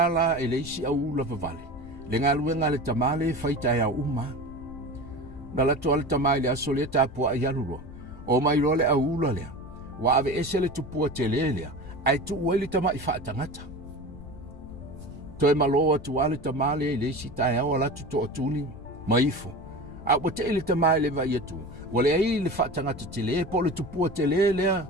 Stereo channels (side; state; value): left; noise; rumble, 18 dB below the sound